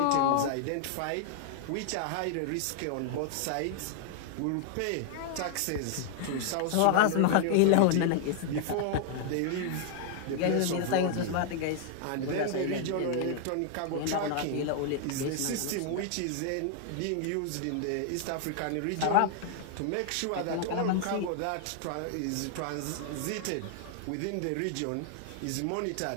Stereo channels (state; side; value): different; both; correlation 0.00